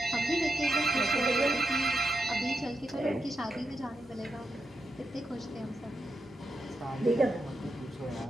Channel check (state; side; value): normal; both; correlation 0.86